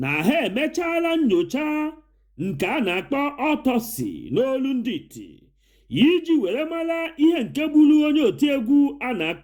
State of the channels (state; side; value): identical; both; correlation 1.00